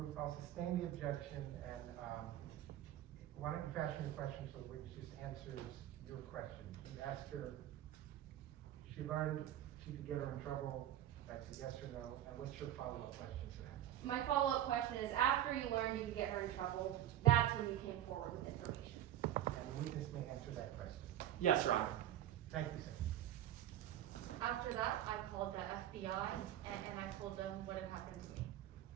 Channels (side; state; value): left; quieter; 12.2 dB